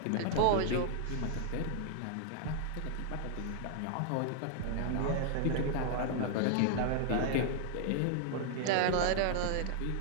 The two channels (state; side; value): different; both; correlation 0.00